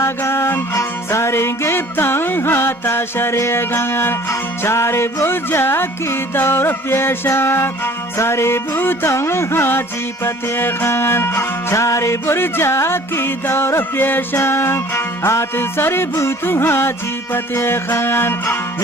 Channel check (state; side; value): normal; both; correlation 0.50